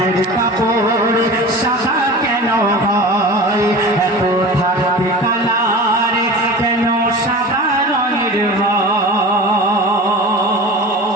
কাপড় সাদা কেন হয় এত থাকতে কালার কেন সাদা রঙের হয়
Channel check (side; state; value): both; normal; correlation 0.34